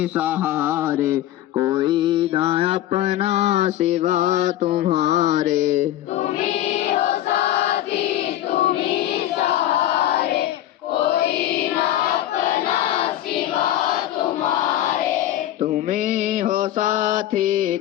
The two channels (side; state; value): right; quieter; 13.2 dB